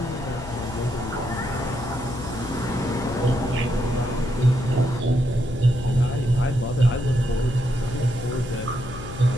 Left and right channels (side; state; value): left; noise; hum, 12 dB below the sound